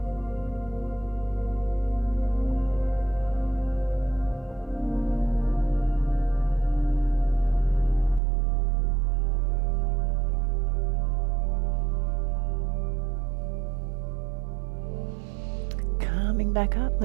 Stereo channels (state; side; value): drops out; left; at 8.2 s